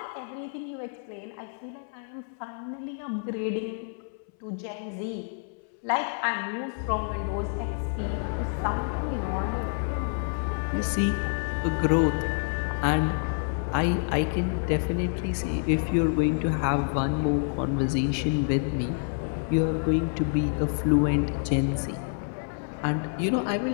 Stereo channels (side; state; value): right; silent; 59 dB below the other